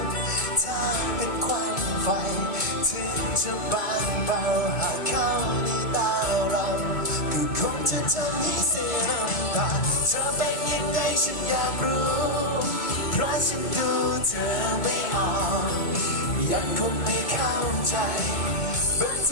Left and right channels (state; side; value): late; right; 2.3 ms